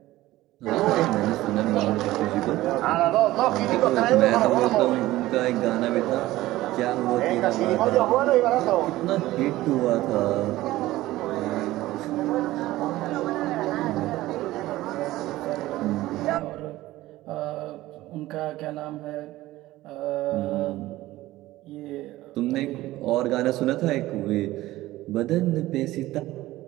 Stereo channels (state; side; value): quieter; left; 16.8 dB